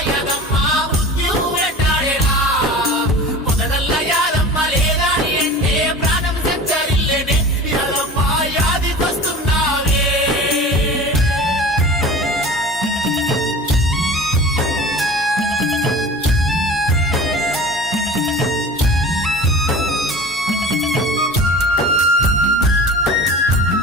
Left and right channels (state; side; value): normal; both; correlation 0.38